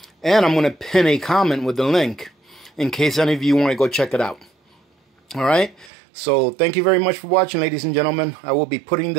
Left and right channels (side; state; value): left; drops out; at 5.9 s